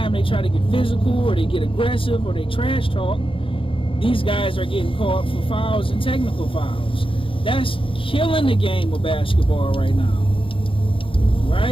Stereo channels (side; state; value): right; late; 0.26 ms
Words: they try to get physical, or they get aggressive, or they trash talk, these guys are getting caught for fouls and technical fouls. That's killing the game of basketball right now.